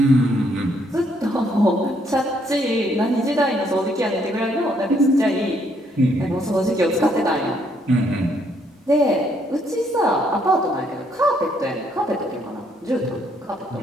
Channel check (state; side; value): normal; both; correlation 0.70